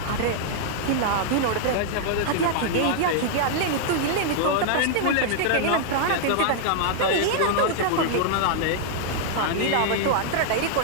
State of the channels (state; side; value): different; both; correlation -0.01